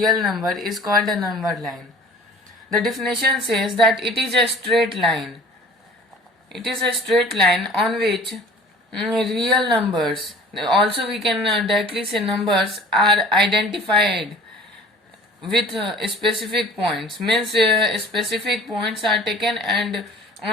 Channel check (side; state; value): both; normal; correlation 0.47